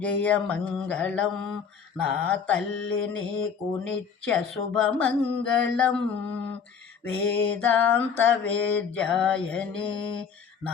జయ మంగళం నా తల్లి నీకు నిత్య శుభమంగళం. వేదాంత వేద్యాయని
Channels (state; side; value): quieter; right; 6.5 dB